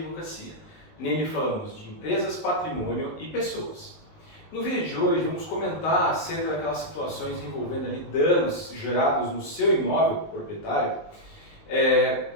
Nele falamos de empresas, patrimônio e pessoas. No vídeo de hoje vamos comentar acerca daquelas situações envolvendo ali danos gerados no seu imóvel proprietário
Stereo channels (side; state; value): right; late; 19 ms